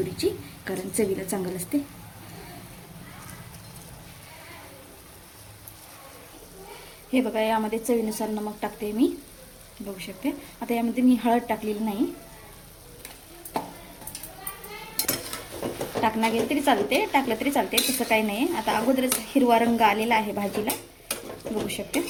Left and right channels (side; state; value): both; identical; correlation 1.00